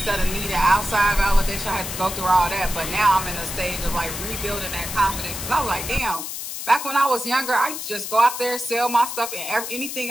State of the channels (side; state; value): left; noise; hiss, 7 dB below the sound